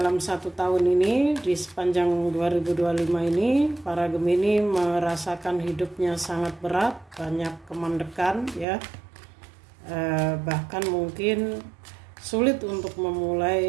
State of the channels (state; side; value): drops out; left; at 8.7 s